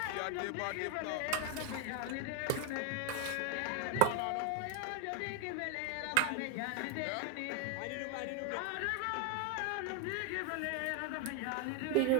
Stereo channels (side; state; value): both; different; correlation 0.01